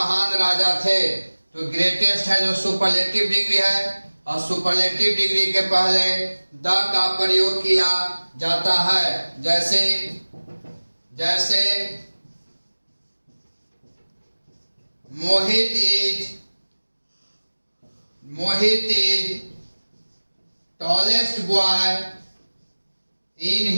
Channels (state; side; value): inverted; both; correlation -1.00